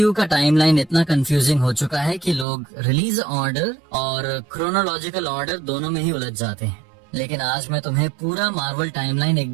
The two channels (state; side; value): drops out; left; at 2.5 s